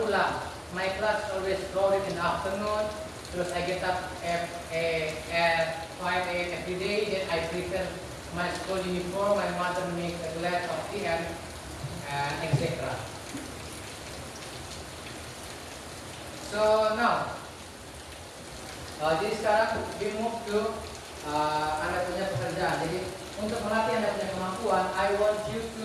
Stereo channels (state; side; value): identical; both; correlation 1.00